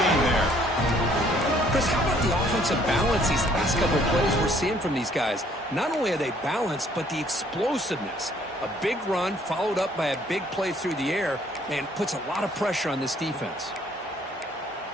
there. Chris, how about the offensive balance these last couple of plays we're seeing from these guys? Not only are they balanced, but the explosiveness. A big run followed up by a big play through the air, and puts a lot of pressure on this defense.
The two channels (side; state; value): both; normal; correlation 0.62